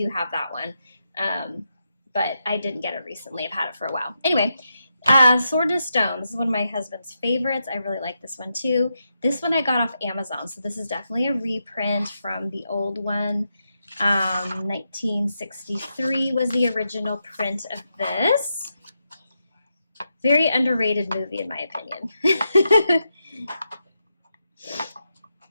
have that one. But I didn't get it recently. I've had it for a while. Anyway, Sword and Stone. This is one of my husband's favorites. I really like this one too. This one I got off Amazon, so this is definitely a reprint from the old one. 1963 was the original print of this. Very underrated movie in my opinion.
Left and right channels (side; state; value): both; inverted; correlation -0.85